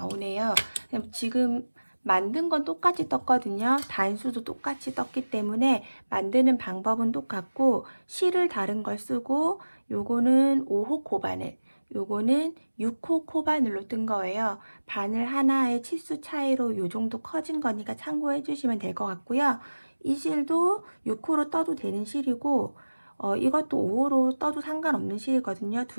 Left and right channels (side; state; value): both; inverted; correlation -1.00